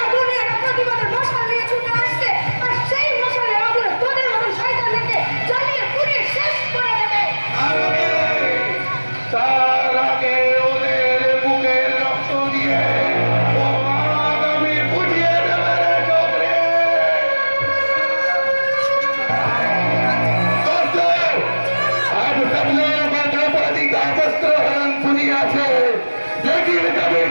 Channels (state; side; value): inverted; both; correlation -1.00